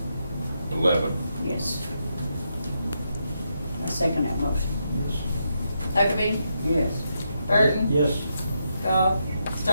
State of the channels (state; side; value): inverted; both; correlation -0.82